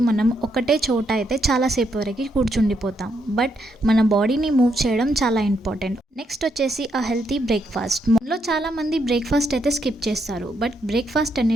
మనం ఒకటే చోట అయితే చాలాసేపు వరకు కూర్చుండిపోతాం. బట్ మన బాడీని మూవ్ చేయడం చాలా ఇంపార్టెంట్. నెక్స్ట్ వచ్చేసి ఆ హెల్తీ బ్రేక్ఫాస్ట్. మనలో చాలామంది బ్రేక్ఫాస్ట్ అయితే స్కిప్ చేస్తారు, బట్ బ్రేక్ఫాస్ట్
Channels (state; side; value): normal; both; correlation 0.77